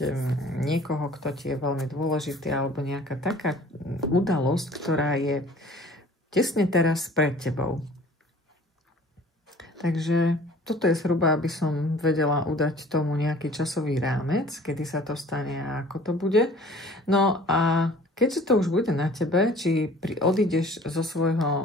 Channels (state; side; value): normal; both; correlation 0.49